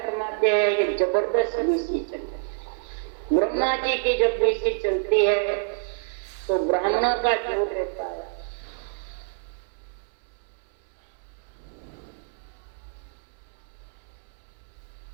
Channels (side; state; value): left; silent; digital silence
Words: हैं ये जबरदस्त विषय चलती है। ब्रह्मा जी की जब विषय चलती है तो ब्राह्मणों का जोर रहता है।